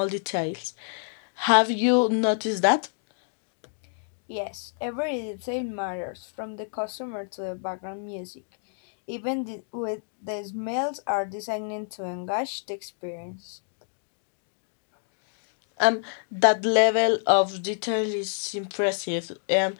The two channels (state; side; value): silent; right; digital silence